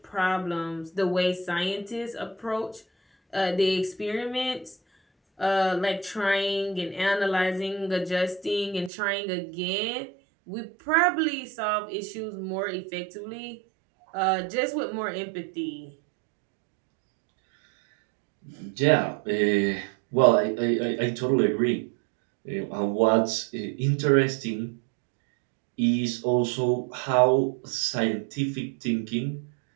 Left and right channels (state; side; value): drops out; left; at 8.9 s